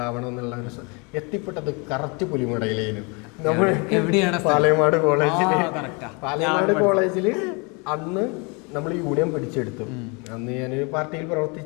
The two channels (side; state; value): right; quieter; 31.0 dB